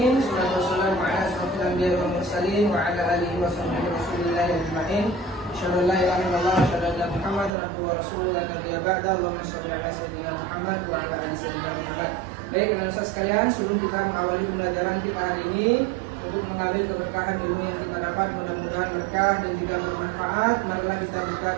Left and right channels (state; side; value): drops out; left; at 7.5 s